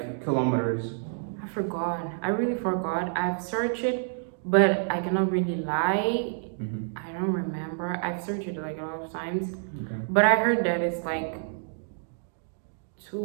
kilometers? I forgot. I really forgot. I've searched it, but I cannot really lie. I don't remember. I've searched it like a lot of times. Okay. But I heard that it's like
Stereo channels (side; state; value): left; silent; digital silence